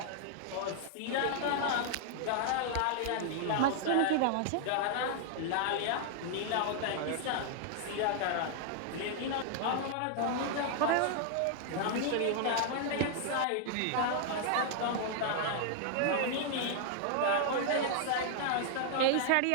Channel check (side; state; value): both; different; correlation 0.00